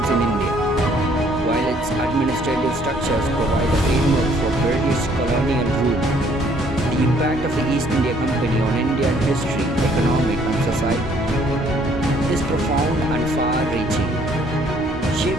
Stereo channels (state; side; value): normal; both; correlation 0.63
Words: in India, while its administrative structures provide a framework for British colonial rule. The impact of the East India Company on Indian history, economic, and society is profound and far-reaching,